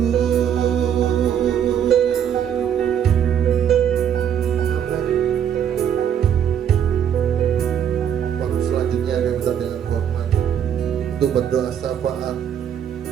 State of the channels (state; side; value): quieter; left; 9.1 dB